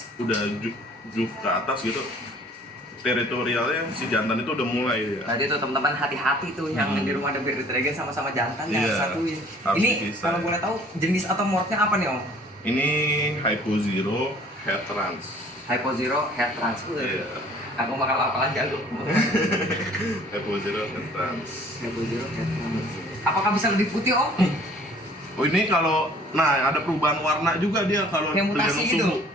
juk ke atas gitu, teritorialnya si jantan itu udah mulai ya. Tadi tuh teman-teman hati-hati tuh yang di rumah ada Bearded Dragon sama-sama jantan yang Iya, satuin. harus Ini dipisah. kalau boleh tahu jenis atau morphnya apa nih Om? Ini Hypo Zero Head Trans. Hypo Zero Head Trans. Iya. Aku bakal lapangan jago. Hypo Zero Head Trans. Hypo Zero Head Trans. Apakah bisa lebih putih Om? Oh ini kalau, nah ada perubahan warna juga dia kalau Kayak mutasi tergantung gitu? suhu.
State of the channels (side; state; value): both; normal; correlation 0.53